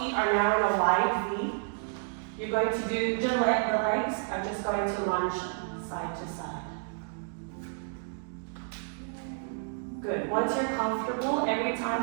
are now in a wide V. You're going to do, the legs are just going to lunge side to side. Good. Once you're comfortable, every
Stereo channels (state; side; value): silent; left; digital silence